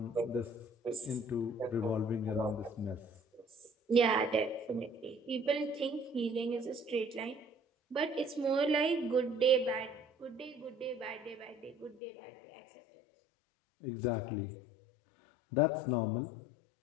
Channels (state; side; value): drops out; right; at 12.0 s